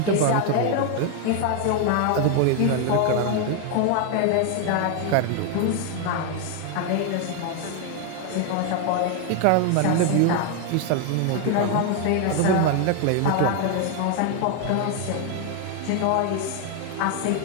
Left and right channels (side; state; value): both; different; correlation 0.01